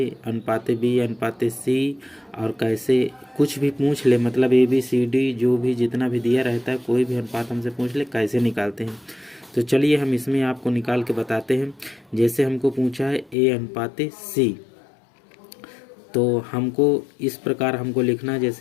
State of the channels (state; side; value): drops out; right; at 13.4 s